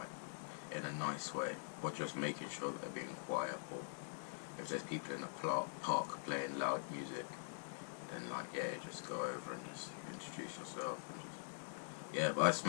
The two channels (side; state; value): right; silent; digital silence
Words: in a nice way, or just making sure that they're being quiet, or if there's people in the park playing loud music, then like, yeah, you just go over and just introduce yourself and just, yeah. But I